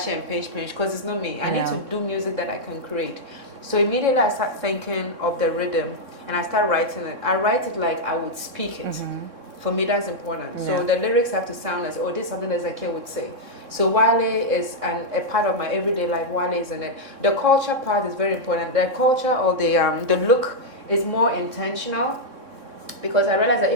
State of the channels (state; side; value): late; left; 3.6 ms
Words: and pinch, because it's not me. I need to do music that I can create. So immediately I start thinking of the rhythm and I start writing it. I write it like I would speak it. For me, that's important. Yeah. So the lyrics have to sound as, this is something that Zakia would say. So Wale is a part of my everyday life. Wale is in it. The culture part is very important. The culture or the look is more intentional, because I realize that